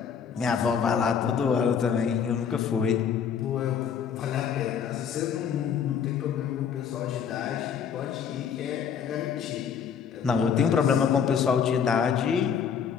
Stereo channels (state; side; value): quieter; right; 7.3 dB